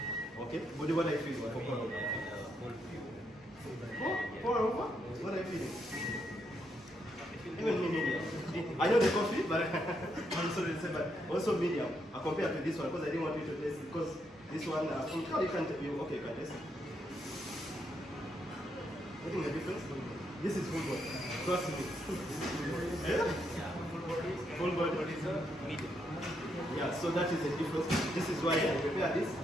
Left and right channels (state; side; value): normal; both; correlation 0.78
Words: Okay. What do I feel for pour over? Pour over? What are you feeling? Even me medium. I know the coffee, but I'm sorry to say, but also medium. I compare to this one because I didn't want you to taste it because this one, how you can you okay, can taste it. Getting the difference? This is full body. Trust me. Yeah? Full body is medium. Yeah, so that is the difference. This is why I prepare this